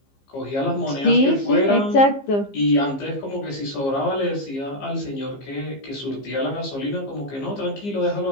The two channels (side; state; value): right; late; 15 ms